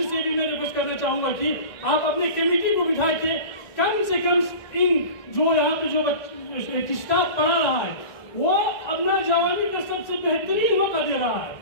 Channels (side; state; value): right; late; 2.0 ms